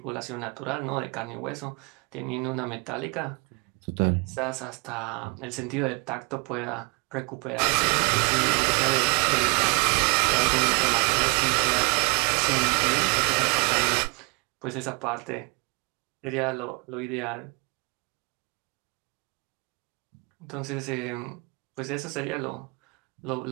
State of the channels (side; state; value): left; quieter; 31.1 dB